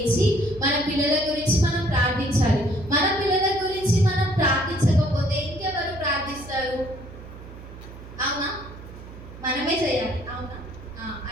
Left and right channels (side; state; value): right; noise; hum, 15 dB below the sound